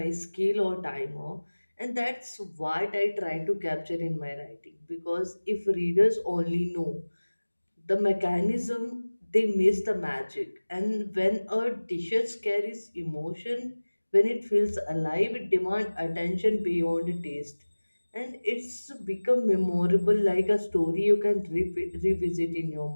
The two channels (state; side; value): inverted; both; correlation -1.00